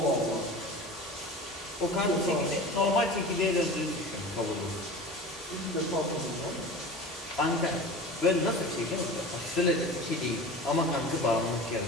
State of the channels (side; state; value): both; normal; correlation 0.35